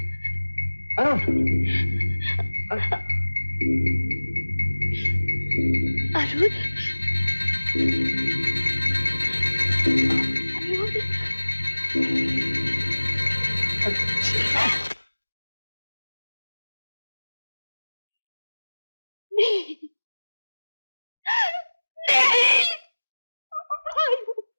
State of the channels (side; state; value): both; inverted; correlation -1.00